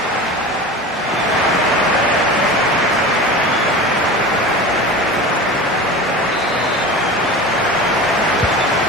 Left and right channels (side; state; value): both; normal; correlation 0.32